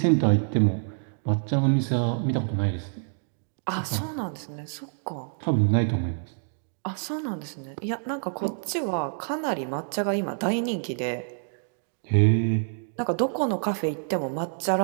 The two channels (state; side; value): silent; left; digital silence